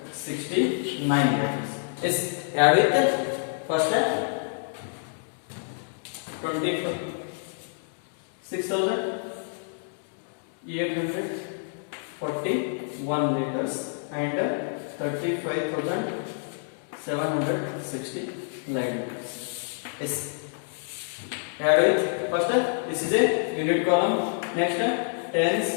liters. Yes, add with first 26,841 liters and 35,769 liters. Yes, add with first this is a unit column. Next tens,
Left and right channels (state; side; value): silent; right; digital silence